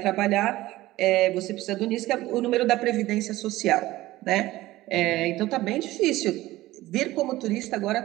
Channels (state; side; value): quieter; left; 17.2 dB